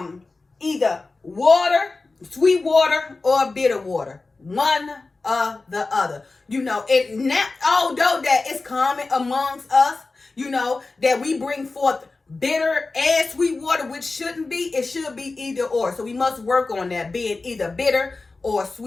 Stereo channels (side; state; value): right; quieter; 3.6 dB